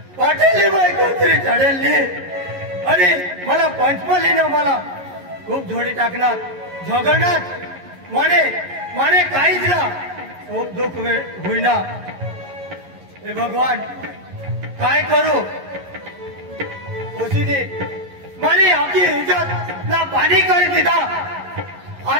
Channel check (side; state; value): left; late; 11 ms